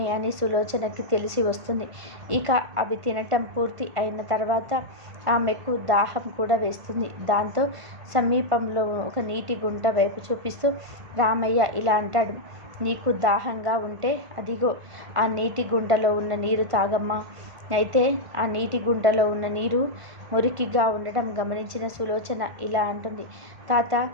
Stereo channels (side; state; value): left; late; 1.5 ms